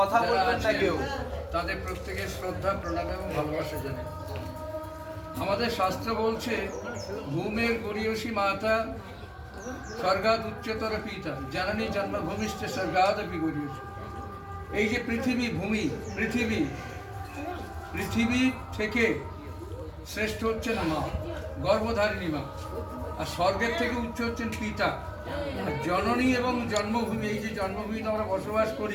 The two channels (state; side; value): identical; both; correlation 1.00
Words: বলবেন না কেউ। তাদের প্রত্যেকের শ্রদ্ধা প্রণাম এবং ভালোবাসা জানাই। আমাদের শাস্ত্র বলছে ভূমের গরিয়সী মাতা স্বর্গাদ উচ্চতর পিতা জানানি জন্মভূমিষ্ঠ স্বর্গাদপি গরিয়সী। এই যে পৃথিবী, ভূমি, পৃথিবী থেকে শ্রেষ্ঠ হচ্ছেন মা, গর্ভধারিণী মা, আর স্বর্গের থেকে উচ্চ হচ্ছেন পিতা। আর জননী এবং জন্মভূমি, এই যে জন্মভূমিতে আমরা বসবাস